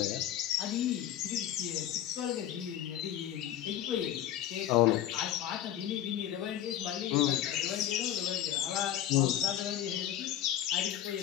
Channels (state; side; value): quieter; right; 11.5 dB